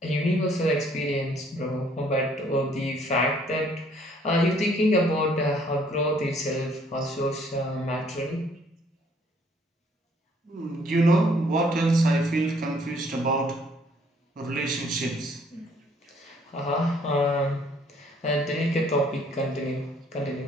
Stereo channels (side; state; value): both; normal; correlation 0.63